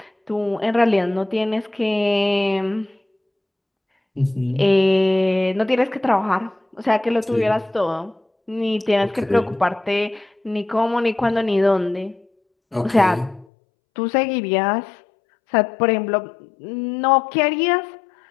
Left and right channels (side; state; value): right; drops out; at 13.5 s